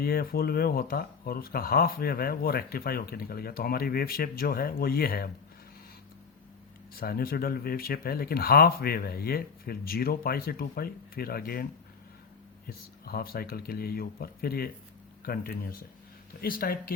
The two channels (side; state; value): right; quieter; 5.7 dB